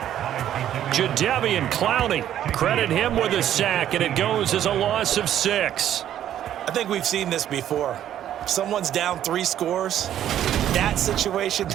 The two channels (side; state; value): left; quieter; 11.2 dB